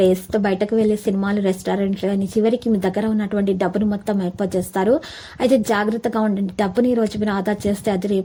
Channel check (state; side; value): identical; both; correlation 1.00